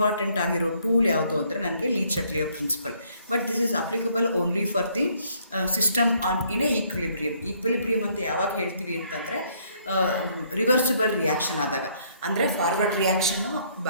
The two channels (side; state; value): both; inverted; correlation -0.66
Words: ಆಗಿರೋ ಟೂಲ್ ಯಾವುದು ಅಂದರೆ ನನಗೆ Le Chatelier principle. But this is applicable only for the system on in a equilibrium. Equilibrium ಅಂತ ಯಾವಾಗ ಹೇಳ್ತೀವಿ ಅಂತಂದರೆ ರಿವರ್ಸಿಬಲ್ ರಿಯಾಕ್ಷನ್ ಆದಾಗ, ಅಂದರೆ ಫಾರ್ವರ್ಡ್ ರಿಯಾಕ್ಷನ್ನು